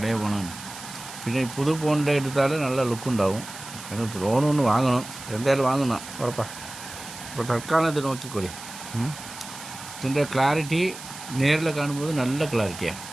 ഫോണാണ് പിന്നെ പുതു ഫോണിൻ്റെ എടുത്താൽ നല്ല ലുക്കുണ്ടാവും എന്നിട്ട് ഫോണൊന്ന് വാങ്ങണം എന്തായാലും വാങ്ങണം ഉറപ്പാണ് അപ്പോൾ തൽക്കാലം ഇത് നോക്കിക്കോളി ഇതിൻ്റെ ക്ലാരിറ്റി നേരിൽ കാണുമ്പോൾ നല്ല ക്ലാരിറ്റിയാണ്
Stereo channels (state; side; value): noise; right; hiss, 13 dB below the sound